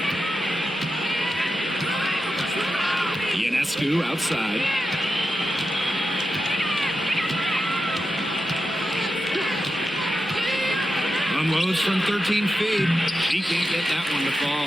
Ionescu outside. Unloads from 13 feet. He can't get that one to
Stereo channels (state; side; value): normal; both; correlation 0.89